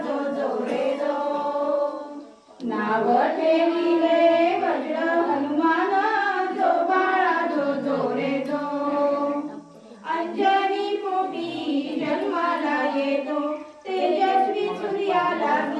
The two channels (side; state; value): both; identical; correlation 1.00